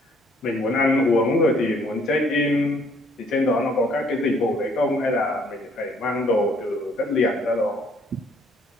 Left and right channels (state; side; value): normal; both; correlation 0.63